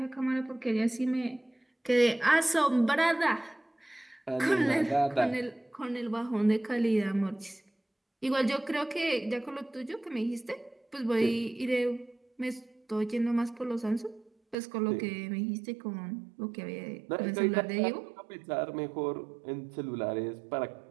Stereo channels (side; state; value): left; drops out; at 14.6 s